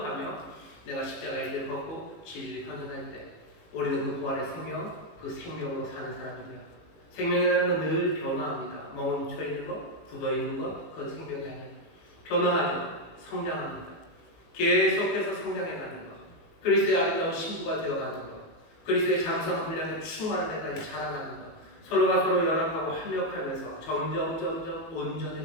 내가 십자가의 일을 벗고 진리를 헌신할 때 우리는 그 부활의 생명, 그 생명으로 사는 사람이며 생명이라는 건 늘 변화합니다. 멈춰 있는 것, 굳어 있는 것, 그건 생명이 아니에요. 변화하죠. 성장합니다. 계속해서 성장해가는 것, 그리스도의 아름다운 신부가 되어가는 것, 그리스도의 장성한 분량을 충만한 데까지 자라나는 것, 서로가 서로 연합하고 합력하면서 점점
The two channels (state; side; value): late; right; 19 ms